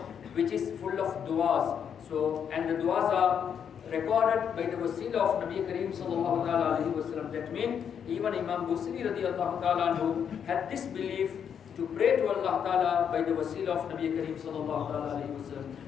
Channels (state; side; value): quieter; right; 7.9 dB